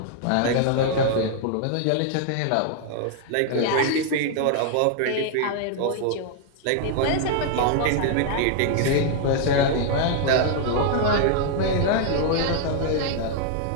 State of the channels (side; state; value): both; different; correlation 0.00